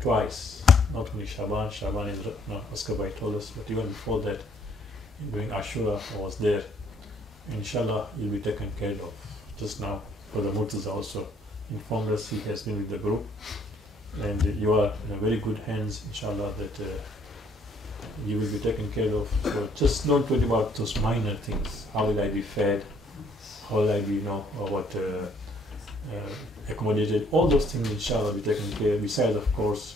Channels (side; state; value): both; normal; correlation 0.65